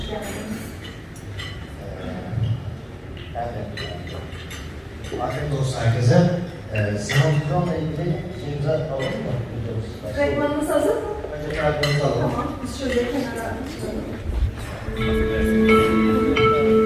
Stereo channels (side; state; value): both; identical; correlation 1.00